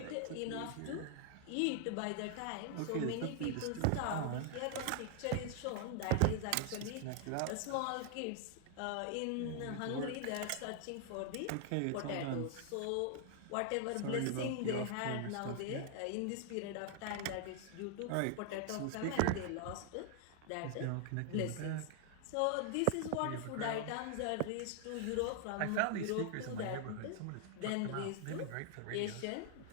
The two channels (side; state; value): both; different; correlation 0.00